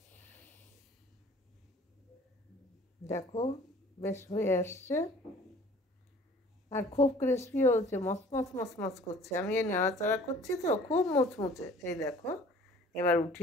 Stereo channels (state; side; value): normal; both; correlation 0.50